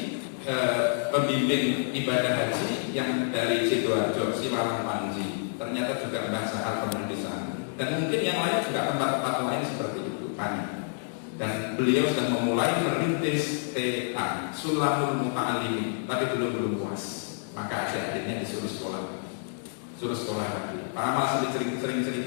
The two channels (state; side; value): silent; right; digital silence